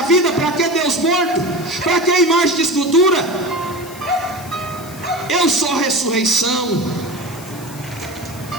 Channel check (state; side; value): noise; left; hiss, 18 dB below the sound